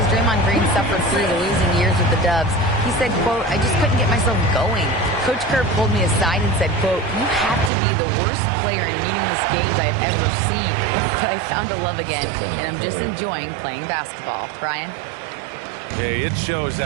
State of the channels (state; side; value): drops out; left; at 7.7 s